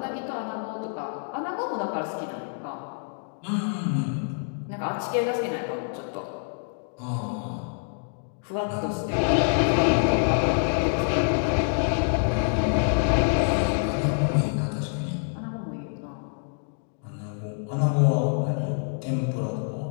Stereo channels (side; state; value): right; silent; 60 dB below the other